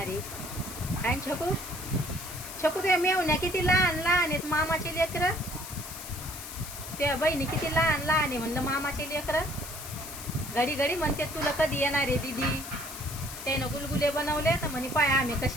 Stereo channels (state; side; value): noise; left; hiss, 11 dB below the sound